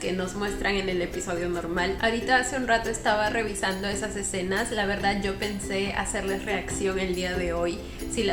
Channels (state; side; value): identical; both; correlation 1.00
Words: nos muestran en el episodio normal. Ahorita hace un rato estaba revisando esas escenas. La verdad yo pensé hacerles reacción el día de hoy si